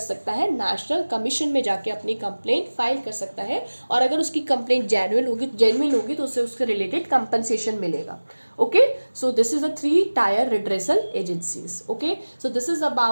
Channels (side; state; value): both; inverted; correlation -1.00